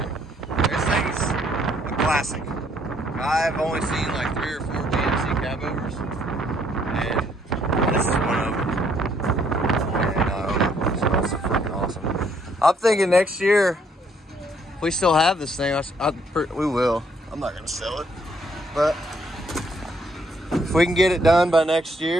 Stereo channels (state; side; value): normal; both; correlation 0.67